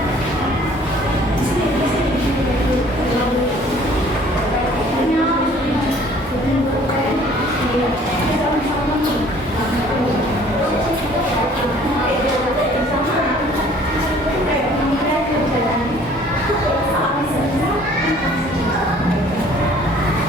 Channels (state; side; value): normal; both; correlation 0.55